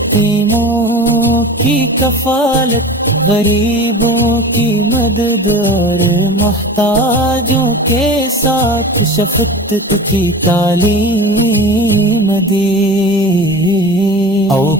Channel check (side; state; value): both; normal; correlation 0.35